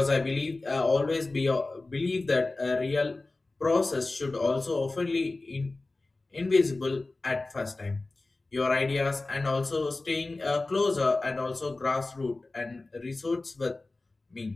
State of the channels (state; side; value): quieter; right; 3.2 dB